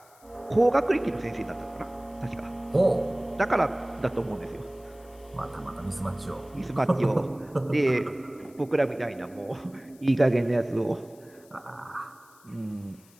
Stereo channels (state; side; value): noise; left; hiss, 27 dB below the sound